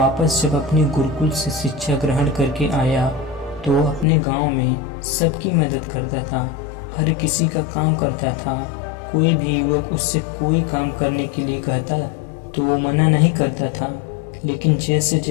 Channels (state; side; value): drops out; right; at 4.0 s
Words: जब अपने गुरुकुल से शिक्षा ग्रहण करके आया तो वो अपने गांव में सबकी मदद करता था, हर किसी का काम करता था। कोई भी युवक उससे कोई काम करने के लिए कहता तो वो मना नहीं करता था। लेकिन जैसे